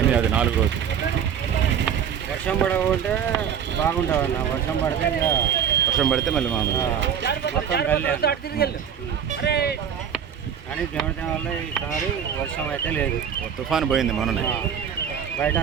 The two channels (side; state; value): left; quieter; 8.2 dB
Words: అది 4 రోజులు. వర్షం పడకుంటే బాగుంటుంది అన్న. వర్షం పడితే ఇక వర్షం పడితే మళ్ళీ మామూలు. మొత్తం గల్లే. కానీ దేవుడి వల్ల ఈసారి వర్షం అయితే లేదు. తుఫాను పోయింది మొన్ననే. బయట